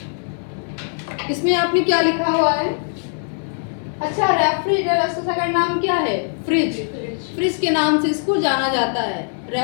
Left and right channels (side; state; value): right; silent; digital silence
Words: इसमें आपने क्या लिखा हुआ है, अच्छा रेफ्रिजरेटर का नाम क्या है, फ्रिज। फ्रिज के नाम से इसको जाना जाता है,